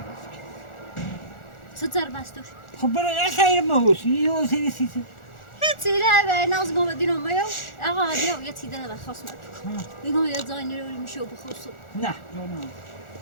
چه زر بستوش خب برای یه خیر مهوسی یه حسین سیسی هیچی نه به ناز گم دینم میو آقا هادی یه چیزی داره خاص من میگم یه زای نروری میشه بخوصو نه جانم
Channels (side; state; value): right; late; 1.4 ms